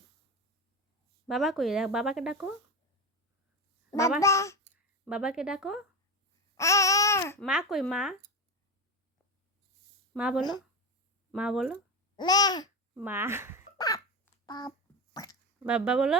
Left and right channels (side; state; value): both; normal; correlation 0.19